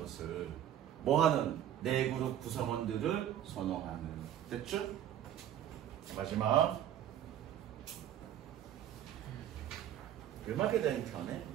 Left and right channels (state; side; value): quieter; left; 11.0 dB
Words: 뭐하는? 내 그룹 구성원들을 선호하는. 됐죠? 마지막. 음악에 대한 견해?